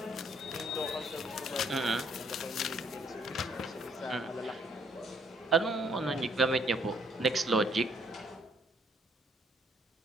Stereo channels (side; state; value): both; normal; correlation 0.67